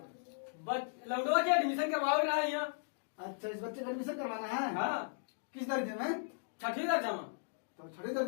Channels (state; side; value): silent; right; digital silence